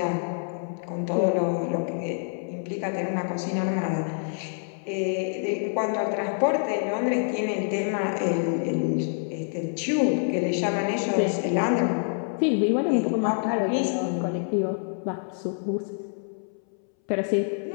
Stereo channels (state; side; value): silent; right; 60 dB below the other